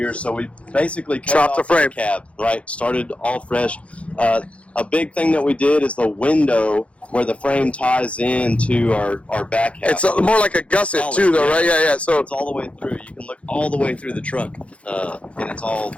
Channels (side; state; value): right; late; 0.062 ms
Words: so we basically chopped the frame cab, right? Started all fresh. A big thing that we did is the window where the frame ties into our back half. It's more like a gusset too, though, right? Yeah. So it's all the way through. You can look all the way through the truck, and it's all